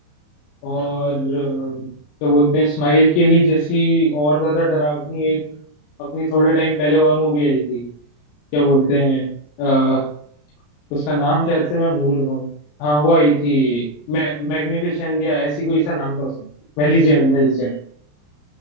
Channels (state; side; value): late; right; 34 ms